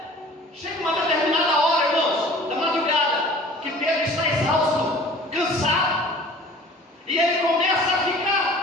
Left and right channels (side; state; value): both; normal; correlation 0.47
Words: Chega uma determinada hora, irmãos, da madrugada, que Pedro está exausto, cansado, e ele começa a